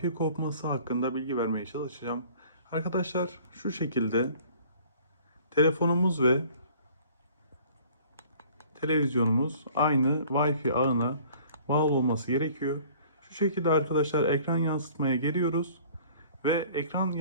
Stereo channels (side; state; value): both; inverted; correlation -0.52